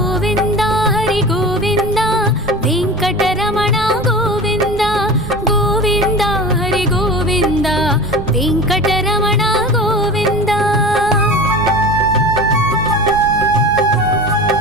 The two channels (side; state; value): right; noise; rumble, 12 dB below the sound